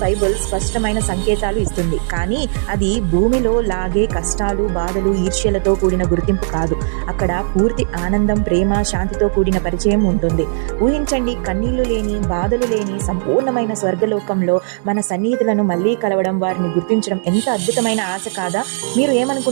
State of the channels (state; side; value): silent; left; digital silence